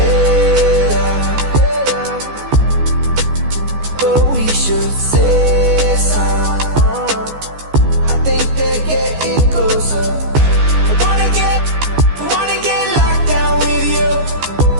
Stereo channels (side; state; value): left; late; 14 ms